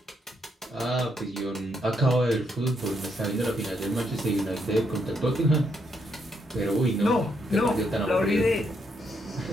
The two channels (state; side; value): normal; both; correlation 0.77